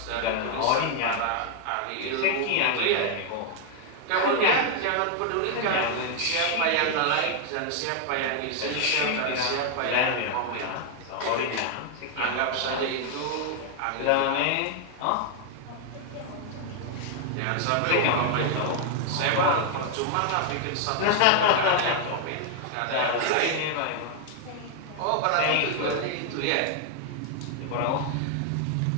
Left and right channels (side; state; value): both; different; correlation 0.00